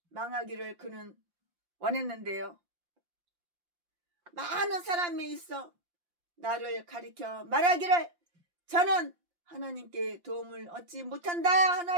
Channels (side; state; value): left; late; 5.7 ms